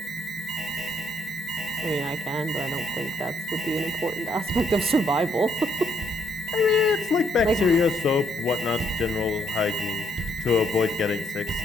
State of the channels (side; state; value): both; normal; correlation 0.72